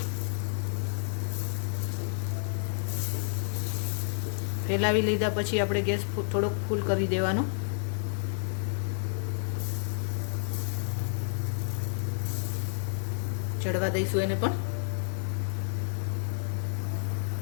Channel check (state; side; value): silent; right; 56 dB below the other